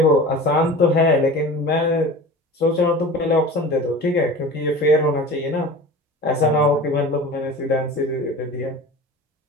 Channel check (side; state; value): both; normal; correlation 0.37